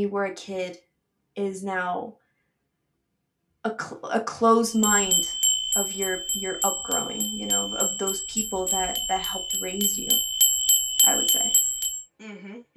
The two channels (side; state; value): both; identical; correlation 1.00